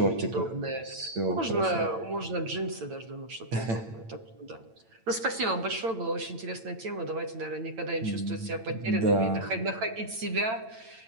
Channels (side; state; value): left; late; 8.9 ms